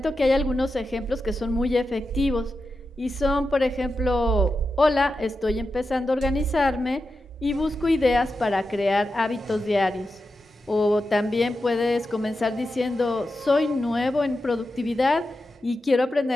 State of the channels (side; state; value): both; normal; correlation 0.90